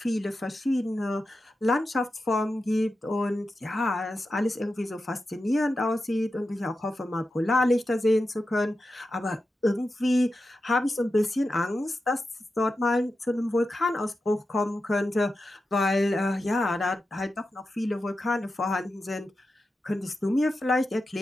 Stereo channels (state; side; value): normal; both; correlation 0.91